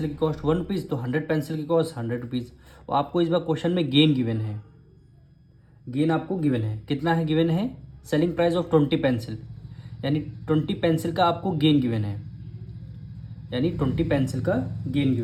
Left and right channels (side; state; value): both; identical; correlation 1.00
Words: की कॉस्ट 1 रुपीज़, तो 100 पेंसिल की कॉस्ट 100 रुपीज़। और आपको इस बार क्वेश्चन में गेन गिवन है, गेन आपको गिवन है, कितना है गिवन है? सेलिंग प्राइस ऑफ 20 पेंसिल, यानी 20 पेंसिल का आपको गेन गिवन है, यानी 20 पेंसिल का गेन